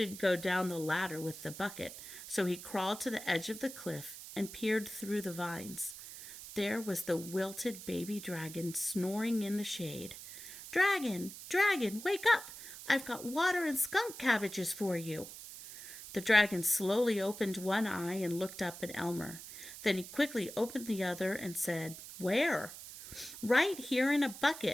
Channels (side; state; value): right; noise; hiss, 13 dB below the sound